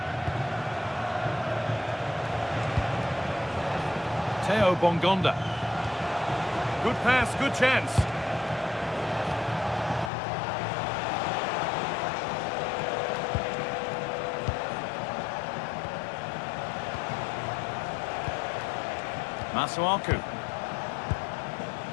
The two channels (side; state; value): right; drops out; at 10.1 s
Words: Theo Bongonda. Good pass, good chance. Masuaku.